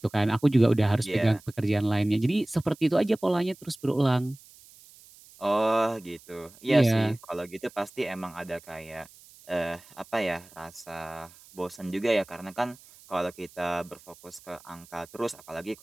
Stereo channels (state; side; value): noise; right; hiss, 23 dB below the sound